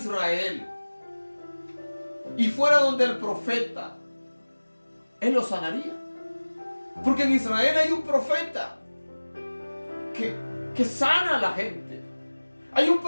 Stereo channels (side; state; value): both; inverted; correlation -1.00